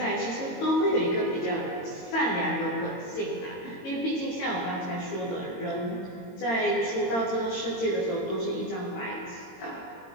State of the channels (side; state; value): right; late; 22 ms